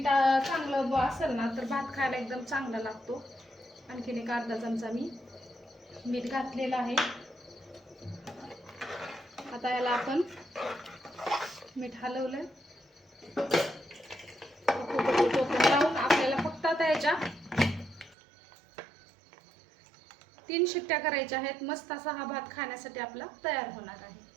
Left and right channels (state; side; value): drops out; left; at 18.2 s